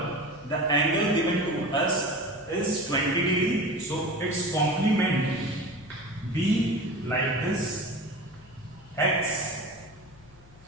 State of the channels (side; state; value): left; noise; hum, 24 dB below the sound